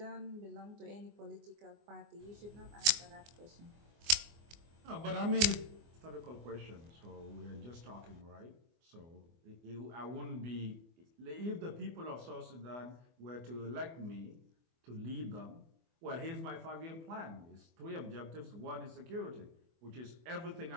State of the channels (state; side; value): late; left; 24 ms